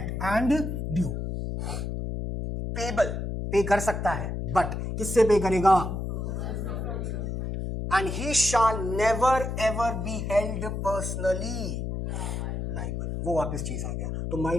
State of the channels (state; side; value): noise; left; hum, 3 dB below the sound